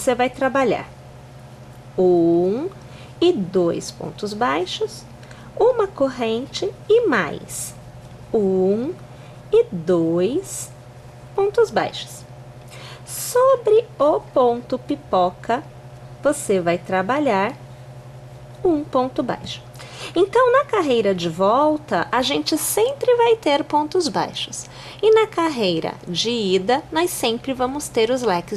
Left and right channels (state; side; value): identical; both; correlation 1.00